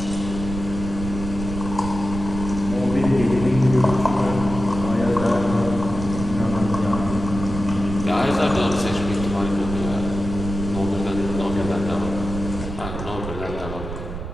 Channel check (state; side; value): noise; right; rumble, 7 dB below the sound